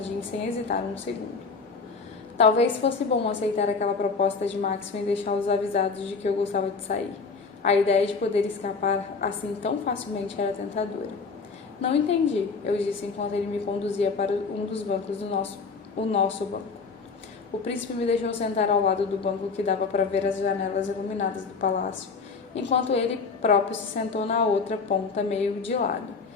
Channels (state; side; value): quieter; right; 4.8 dB